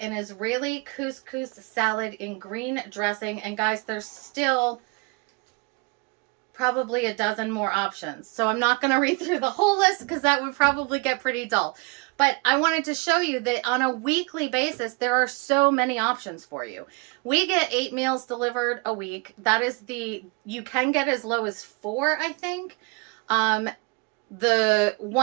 and Israeli couscous salad in green dressing. And guys, there's still probably a dozen more options. So I'm not going to read through the whole list because that would probably get pretty dull. But I wanted to show you that on a weekly basis, there are so many options for you. We get 8 meals delivered a week. That is you can get as low as 4, I think. The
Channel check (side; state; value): left; quieter; 29.1 dB